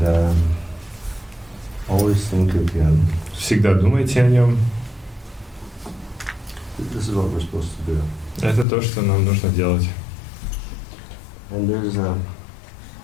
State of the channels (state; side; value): drops out; right; at 8.7 s